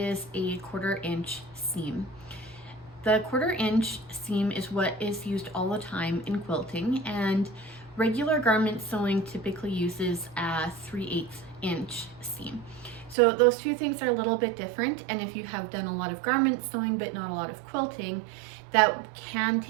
a 1/4 inch seam. The 1/4 inch seam is what is used all the time in quilting, and regular garment sewing typically uses a 3/8 inch seam. So those two things are a little bit different, and if you have done a lot of garment sewing but not a lot of quilting, that can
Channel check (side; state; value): left; drops out; at 13.2 s